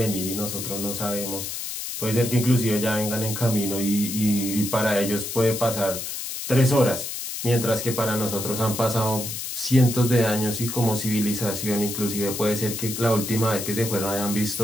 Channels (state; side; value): noise; left; hiss, 6 dB below the sound